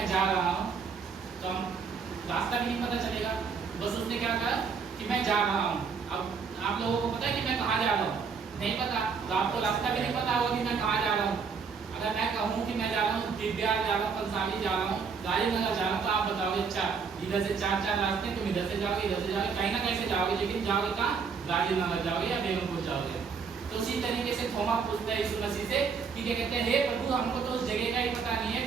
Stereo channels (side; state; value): left; quieter; 5.6 dB